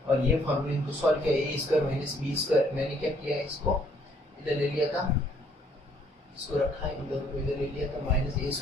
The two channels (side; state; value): both; normal; correlation 0.65